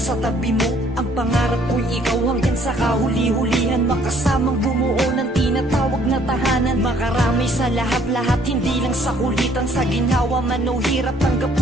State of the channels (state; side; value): normal; both; correlation 0.61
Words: tabi mo. Ang pangarap ko'y ikaw hanggang sa kahuli-hulihan, makasamang bumuo ng tinatawag na tahanan. Makarami sa lahat-lahat, hindi lang sa kulitan. Sa ginhawa man o hirap, tanggap